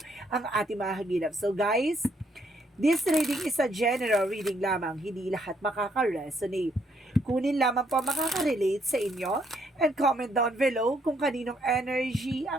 ang ating mahagilap? So guys, this reading is a general reading lamang, hindi lahat makaka-resonate. Kunin lamang po makaka-relate sa inyo and comment down below kung kaninong energy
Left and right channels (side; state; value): both; normal; correlation 0.71